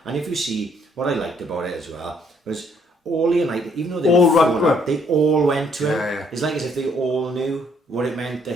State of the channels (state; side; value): normal; both; correlation 0.66